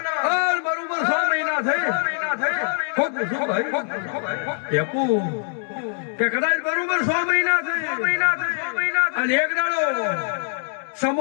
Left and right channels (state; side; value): silent; right; 58 dB below the other